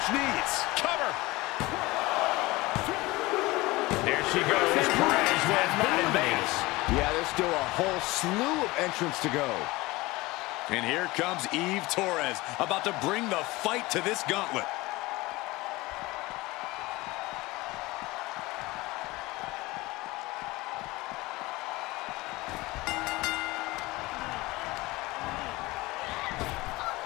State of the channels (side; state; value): right; quieter; 21.0 dB